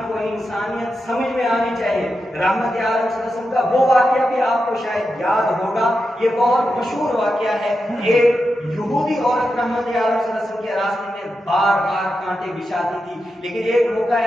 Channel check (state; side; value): normal; both; correlation 0.88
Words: کو انسانیت سمجھ میں آنی چاہیے۔ رحمت عالم صلی اللہ علیہ وسلم کا وہ واقعہ بھی آپ کو شاید یاد ہوگا، یہ بہت مشہور واقعہ ہے۔ ایک یہودی عورت رحمت عالم صلی اللہ علیہ وسلم کے راستے میں بار بار کانٹے بچھاتی تھی، لیکن ایک موقع